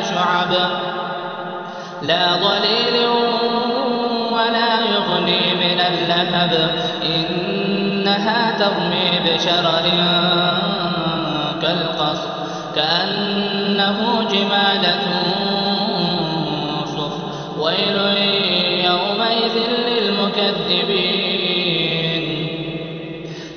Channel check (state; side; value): identical; both; correlation 1.00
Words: شعب لا ظليل ولا يغني من اللهب إنها ترمي بشرر كالقصر كأنه جمالة صفر. ويل يومئذ للمكذبين.